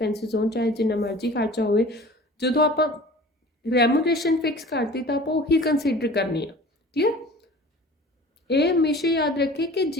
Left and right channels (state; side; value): normal; both; correlation 0.43